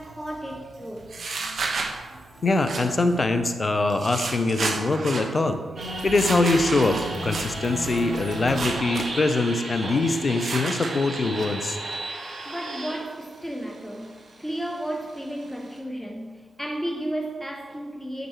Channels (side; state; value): both; normal; correlation 0.85